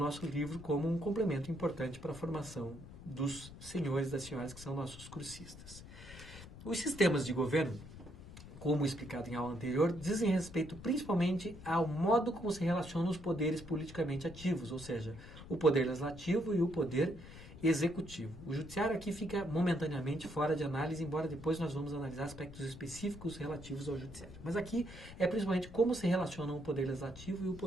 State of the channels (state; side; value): noise; left; rumble, 15 dB below the sound